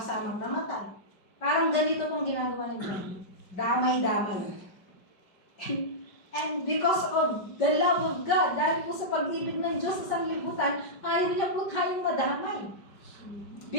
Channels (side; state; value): right; late; 5.2 ms